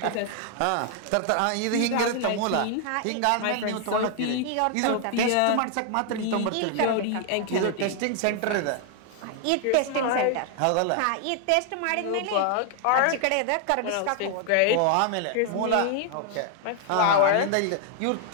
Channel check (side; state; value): both; different; correlation 0.00